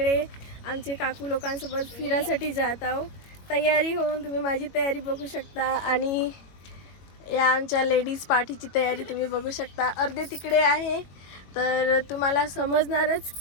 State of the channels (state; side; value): late; right; 21 ms